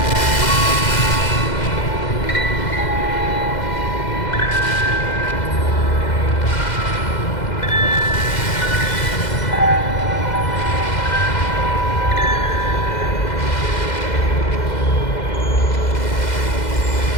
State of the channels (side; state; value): right; late; 2.0 ms